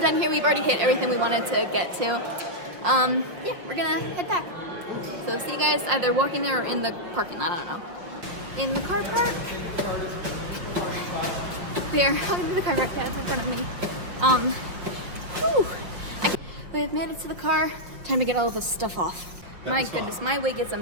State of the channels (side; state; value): left; late; 5.8 ms